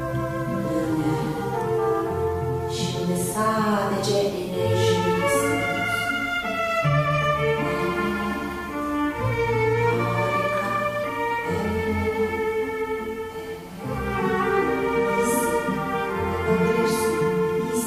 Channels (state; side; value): identical; both; correlation 1.00